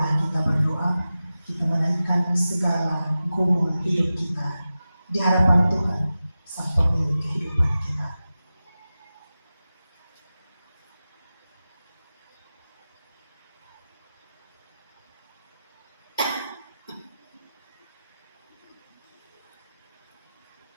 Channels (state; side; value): inverted; both; correlation -0.94